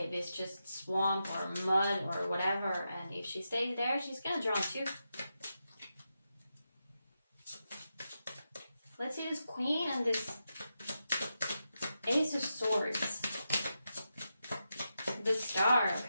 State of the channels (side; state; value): both; inverted; correlation -0.88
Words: is just swamp or mud or whatever, and if she stays there, she's gonna drown too. Let's see this Queen and this Ace of Swords. The Star,